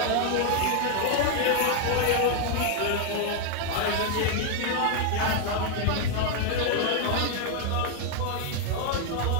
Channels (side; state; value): both; different; correlation 0.01